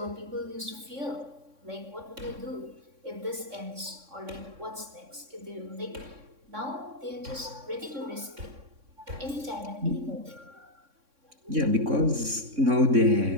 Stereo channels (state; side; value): late; left; 3.6 ms